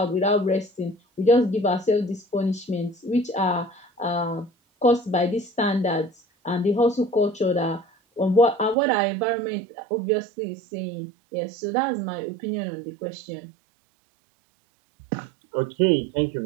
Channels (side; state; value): left; drops out; at 8.8 s